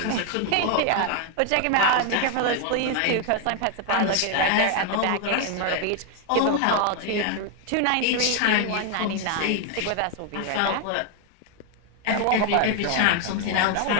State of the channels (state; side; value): different; both; correlation 0.00